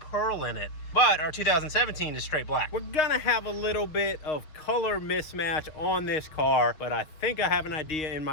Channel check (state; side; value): late; right; 6.7 ms